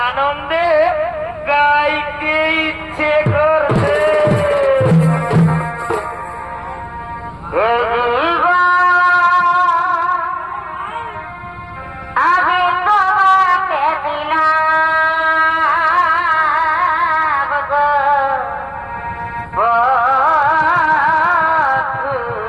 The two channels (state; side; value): identical; both; correlation 1.00